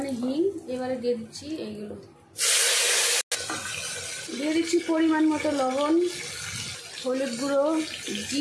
হিং। এবারে দিয়ে দিচ্ছি এইগুলো, দিয়ে দিচ্ছি পরিমাণ মতো লবণ, হলুদ গুঁড়ো,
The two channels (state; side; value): identical; both; correlation 1.00